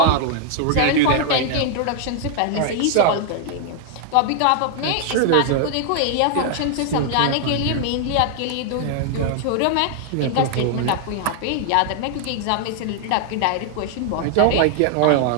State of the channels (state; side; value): different; both; correlation 0.00